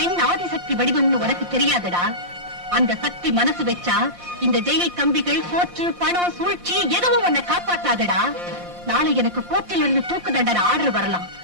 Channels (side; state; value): left; late; 5.7 ms